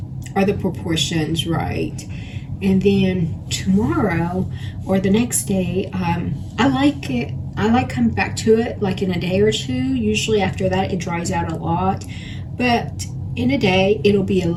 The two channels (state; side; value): identical; both; correlation 1.00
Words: Are the proportions right? And then tomorrow or the next day, I like it. I like coming back to it like in a day or two. Usually after that it dries out a lot, but in a day it'll be a